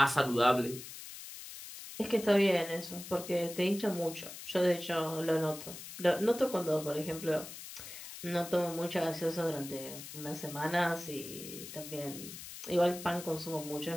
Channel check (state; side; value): noise; left; hiss, 12 dB below the sound